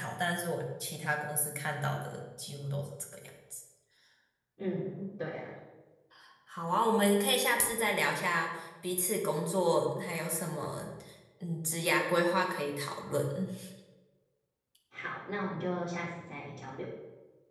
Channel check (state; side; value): identical; both; correlation 1.00